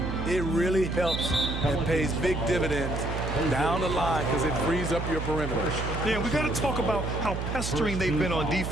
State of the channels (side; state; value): right; noise; hum, 4 dB below the sound